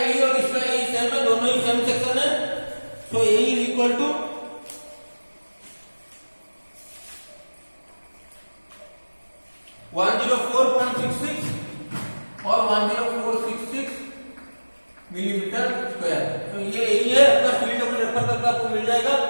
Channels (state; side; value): inverted; both; correlation -1.00